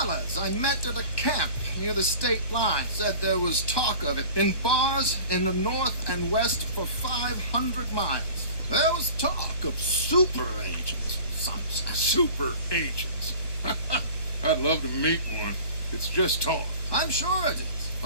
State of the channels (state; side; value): late; right; 1.2 ms